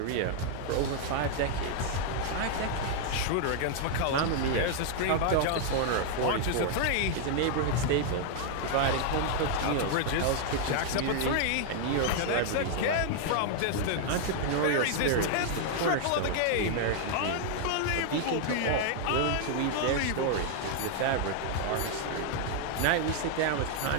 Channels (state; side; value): different; both; correlation 0.00